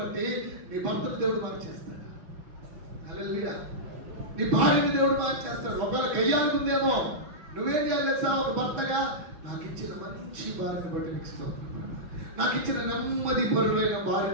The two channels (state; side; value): late; left; 5.8 ms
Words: నీ భర్తను దేవుడు మార్చేస్తాడు. హల్లెలూయా. నీ భార్యని దేవుడు మార్చేస్తాడు. ఒకవేళ గయ్యాలుందేమో, నువ్వేం చేయాలి తెలుసా? ఒక భర్తగా నాకు ఇచ్చిన మంచి భార్యను బట్టి నీకు స్తోత్రం, నాకు ఇచ్చిన నెమ్మది పరుడైన